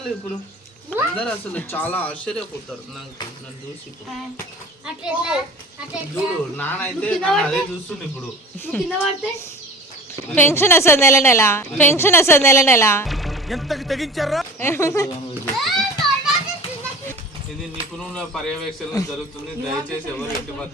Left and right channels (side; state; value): both; normal; correlation 0.38